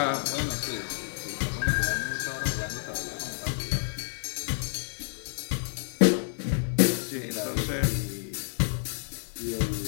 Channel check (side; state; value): right; silent; digital silence